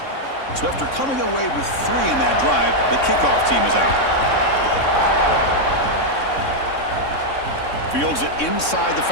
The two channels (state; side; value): late; right; 3.6 ms